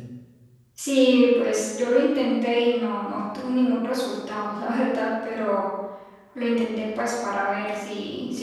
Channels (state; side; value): identical; both; correlation 1.00